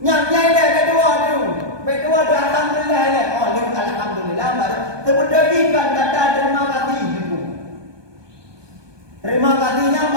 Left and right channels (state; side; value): late; left; 1.2 ms